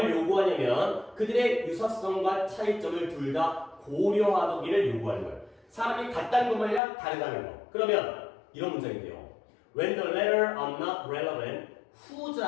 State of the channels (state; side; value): drops out; right; at 6.8 s